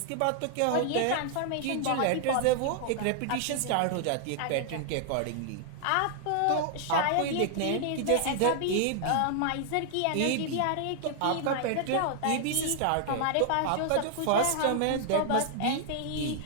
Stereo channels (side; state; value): both; different; correlation -0.01